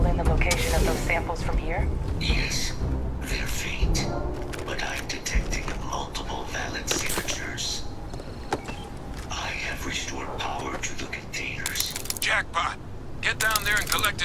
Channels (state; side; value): identical; both; correlation 1.00